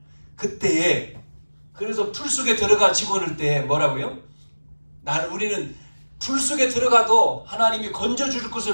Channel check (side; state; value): both; inverted; correlation -1.00